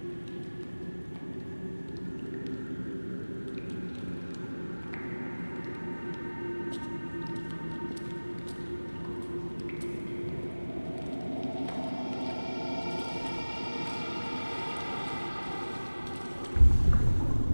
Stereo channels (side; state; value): both; inverted; correlation -1.00